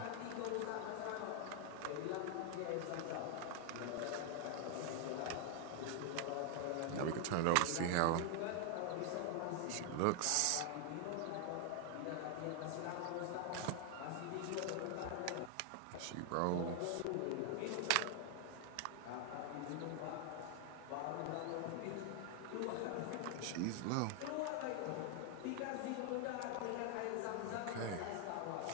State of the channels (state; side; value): different; both; correlation 0.00